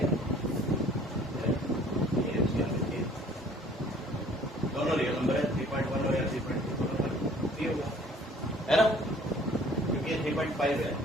दोनों रियल नंबर है, 3.1 और 3.2 दोनों पर भी होगा, है ना, क्योंकि ये 3.5 है,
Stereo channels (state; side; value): normal; both; correlation 0.54